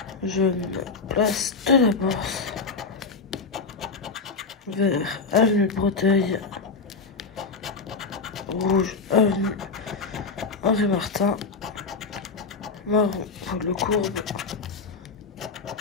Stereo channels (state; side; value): quieter; right; 4.5 dB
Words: Jaune, place de la Bourse. Vert, avenue de Breteuil. Rouge, avenue Henri Martin. Marron, pour le Courbe.